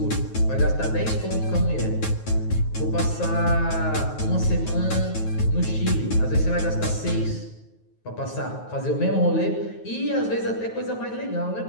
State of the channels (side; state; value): right; late; 9.3 ms